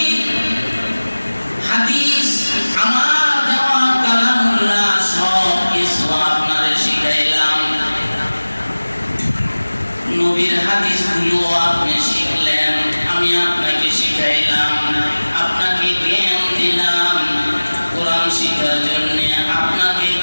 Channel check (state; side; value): inverted; both; correlation -1.00